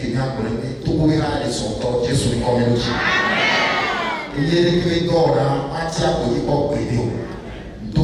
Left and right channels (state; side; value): identical; both; correlation 1.00